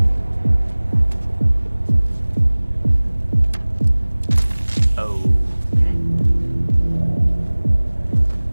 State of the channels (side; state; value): both; inverted; correlation -1.00